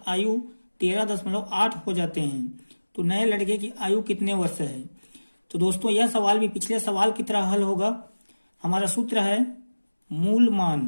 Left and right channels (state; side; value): inverted; both; correlation -1.00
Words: आयु 13.8 हो जाते हैं, तो नए लड़के की आयु कितने वर्ष है? तो दोस्तों यह सवाल भी पिछले सवाल की तरह हल होगा। हमारा सूत्र है मूल